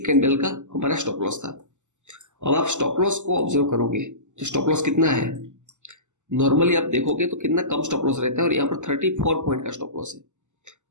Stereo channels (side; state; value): left; late; 0.84 ms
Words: का हमारा स्टॉप लॉस था। अब आप स्टॉप लॉस को ऑब्जर्व करोगे तो स्टॉप लॉस कितना है, नॉर्मली आप देखोगे तो कितना कम स्टॉप लॉस रहता है, और यहाँ पर 34 पॉइंट का स्टॉप लॉस है।